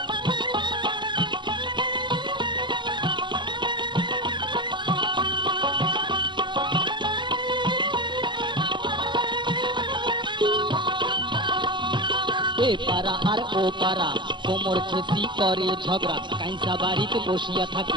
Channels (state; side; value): late; left; 0.22 ms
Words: এ পাড়া আর ও পাড়া কোমর ছেঁচি করে ঝগড়া, কাইসা বাড়িতে বসিয়া